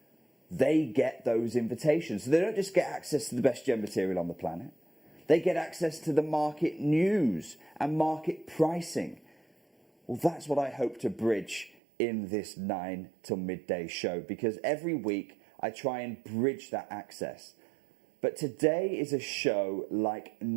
they get those invitations. So they don't just get access to the best gem material on the planet. They get access to the market news and market pricing. Well, that's what I hope to bridge in this 9 till midday show, because every week I try and bridge that access. But today is a show like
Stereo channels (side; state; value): left; drops out; at 11.8 s